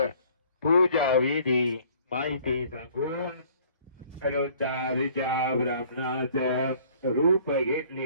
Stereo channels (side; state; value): both; inverted; correlation -0.56